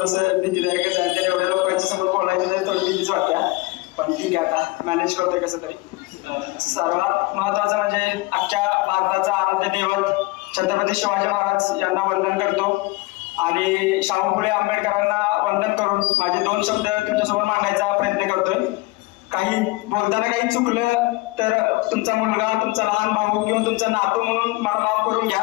भीतीदायक आहे. एवढ्या लोकांच्या समोर बोलायचं नाही, थोडी भीतीच वाटते, पण ठीक आहे, आता मॅनेज करतोय कसं तरी. सर्वात महत्वाचं म्हणजे अख्ख्या भारताचा आराध्य दैवत छत्रपती शिवाजी महाराज यांना वंदन करतो आणि शाहू फुले आंबेडकरांना वंदन करून माझे 2 शब्द तुमच्यासमोर मांडायचा प्रयत्न करतोय. काही बोलताना काही चुकलं तर तुमचा मुलगा, तुमचा लहान भाऊ किंवा तुमचा नातू म्हणून मला माफ करून घ्या,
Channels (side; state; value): right; quieter; 22.6 dB